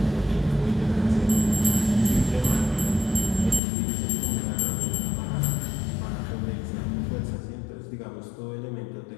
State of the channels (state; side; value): drops out; right; at 3.6 s